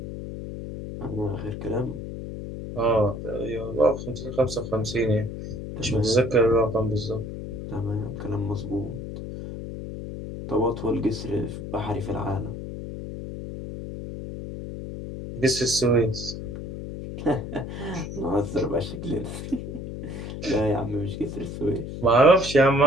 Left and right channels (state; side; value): noise; left; hum, 8 dB below the sound